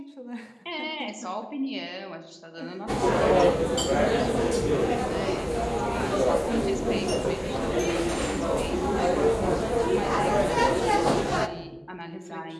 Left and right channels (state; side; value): identical; both; correlation 1.00